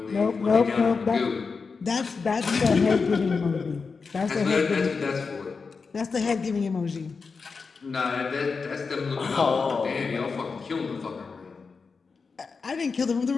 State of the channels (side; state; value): right; quieter; 4.9 dB